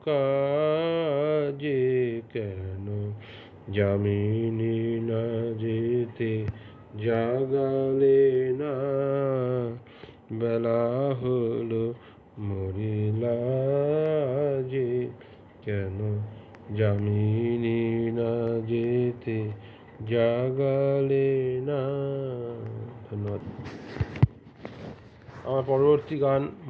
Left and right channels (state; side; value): identical; both; correlation 1.00